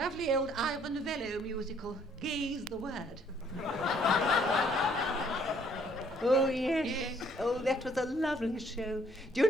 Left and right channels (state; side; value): normal; both; correlation 0.64